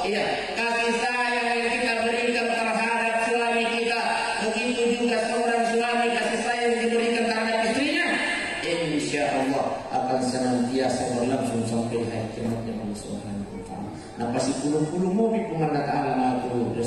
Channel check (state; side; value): identical; both; correlation 1.00